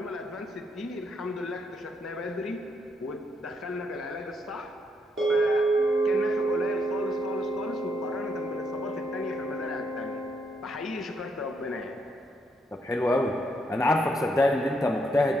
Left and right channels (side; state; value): both; normal; correlation 0.76